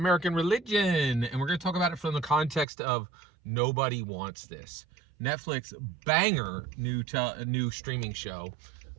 religion, and we're going to talk about it from the context of Nobody Wants This. Netflix banger new streaming show.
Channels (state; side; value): drops out; left; at 2.7 s